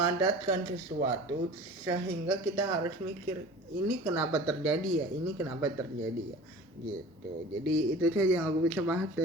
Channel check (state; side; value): normal; both; correlation 0.40